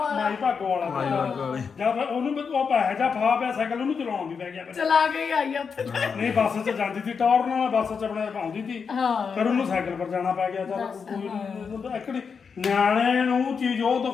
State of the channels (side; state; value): right; quieter; 5.9 dB